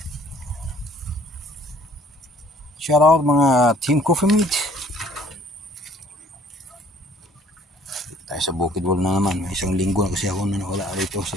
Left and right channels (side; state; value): both; normal; correlation 0.57